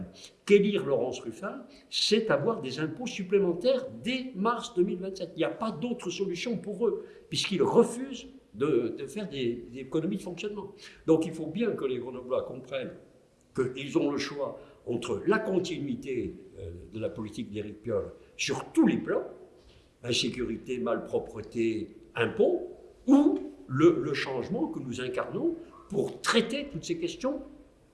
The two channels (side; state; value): both; identical; correlation 1.00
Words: qu'élire Laurence Ruffin, c'est avoir des impôts supplémentaires dès mars 2027. Il n'y a pas d'autre solution pour eux, puisqu'ils refusent de faire des économies de fonctionnement. Donc il faut bien que les Grenoblois comprennent qu'ils ont le choix entre la continuité de la politique d'Éric Piolle sur tous les plans, insécurité, malpropreté, impôts, ou le changement que nous incarnons pour traiter toutes ces questions